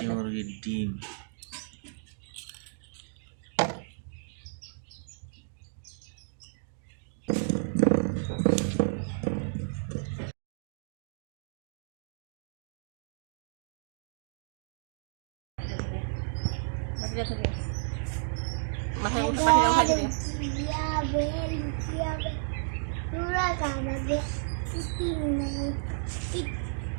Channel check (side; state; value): left; silent; digital silence